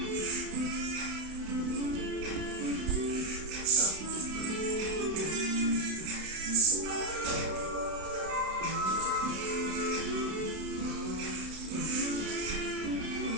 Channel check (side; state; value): left; late; 32 ms